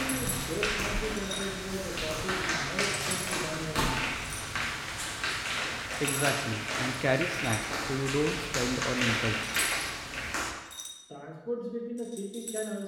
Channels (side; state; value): both; identical; correlation 1.00